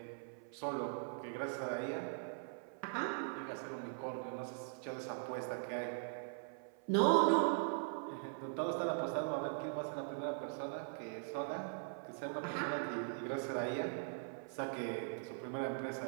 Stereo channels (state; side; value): silent; left; 50 dB below the other